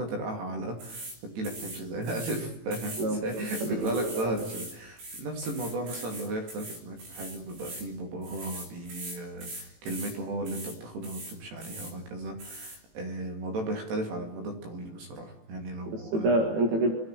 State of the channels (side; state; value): left; late; 18 ms